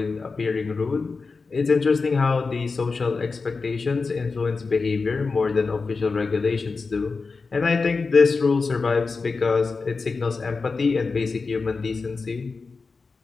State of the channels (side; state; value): right; quieter; 4.4 dB